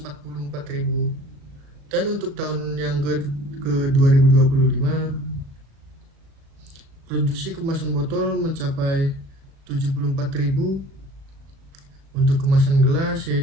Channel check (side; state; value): left; late; 37 ms